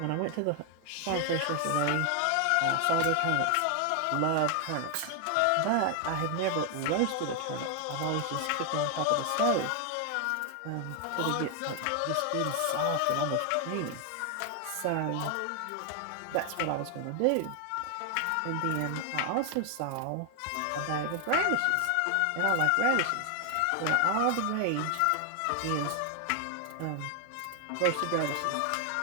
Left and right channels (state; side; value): different; both; correlation 0.00